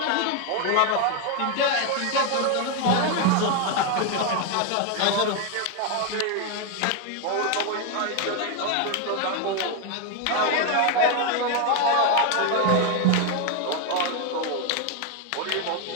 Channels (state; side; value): different; both; correlation 0.01